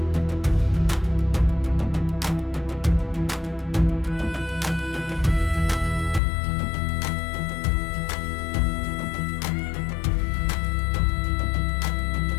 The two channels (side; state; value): right; drops out; at 6.2 s